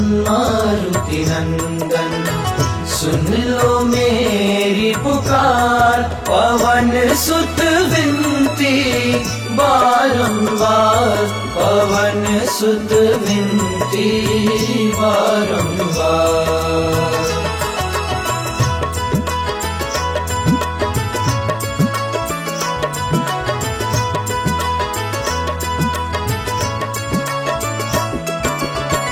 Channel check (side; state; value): both; identical; correlation 1.00